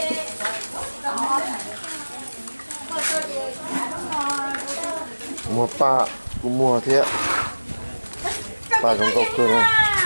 mua pa cũng mua thế ba trong gốc cơ này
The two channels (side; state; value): both; inverted; correlation -1.00